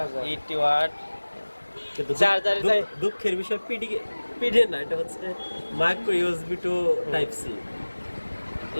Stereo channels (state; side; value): inverted; both; correlation -1.00